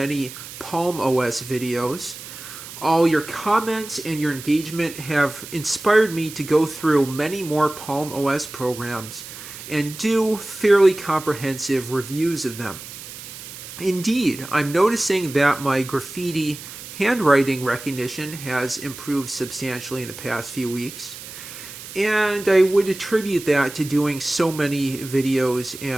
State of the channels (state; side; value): noise; right; hiss, 13 dB below the sound